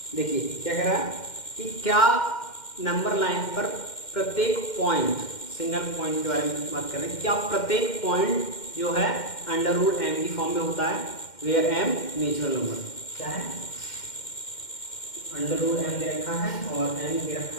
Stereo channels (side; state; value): right; late; 2.1 ms